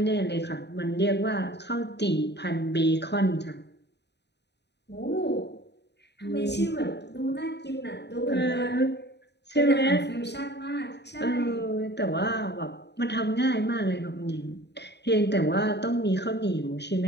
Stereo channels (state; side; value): late; right; 0.50 ms